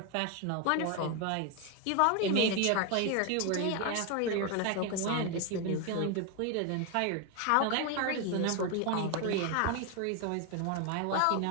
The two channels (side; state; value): both; different; correlation 0.01